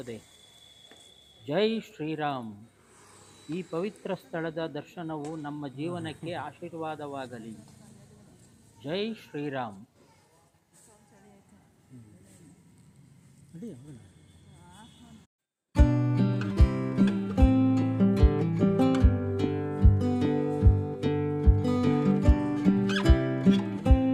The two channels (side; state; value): both; identical; correlation 1.00